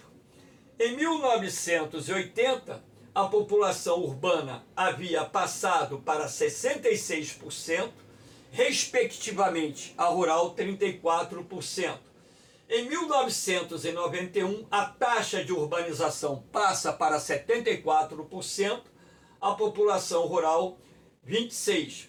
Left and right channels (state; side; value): identical; both; correlation 1.00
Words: Em 1980, a população urbana havia passado para 66%, respectivamente a rural 34%. Em 1991, a taxa de urbanização passa para 74%, a população rural